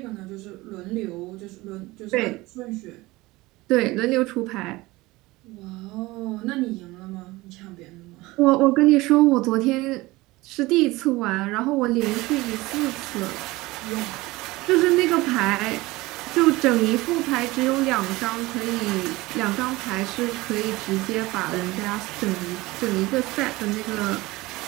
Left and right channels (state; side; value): quieter; left; 20.5 dB